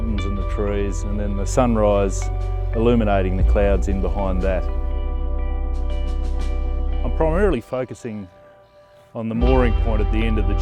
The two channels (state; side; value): identical; both; correlation 1.00